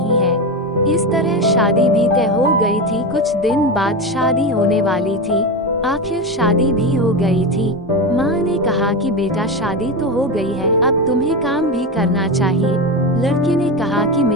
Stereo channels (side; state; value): both; normal; correlation 0.17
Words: है। इस तरह शादी भी तय हो गई थी। कुछ दिन बाद शादी होने वाली थी। आखिर शादी भी हो गई थी। माँ ने कहा कि बेटा शादी तो हो गई है, अब तुम्हें काम भी करना चाहिए। लड़के ने कहा कि